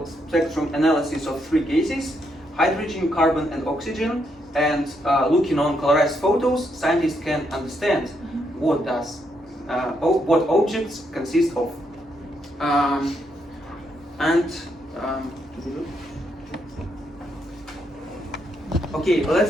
analysis of three gases: hydrogen, carbon, and oxygen. And looking on colorized photos, scientists can understand what objects consist of. Okay,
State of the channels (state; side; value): normal; both; correlation 0.77